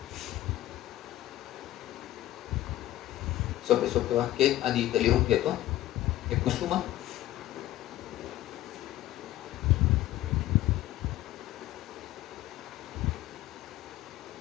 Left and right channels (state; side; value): quieter; right; 14.6 dB